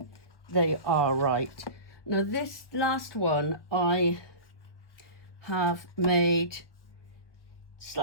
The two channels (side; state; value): right; late; 1.2 ms